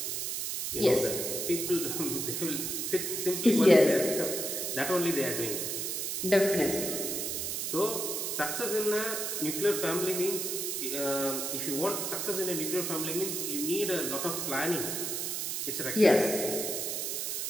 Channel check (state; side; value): noise; right; hiss, 2 dB below the sound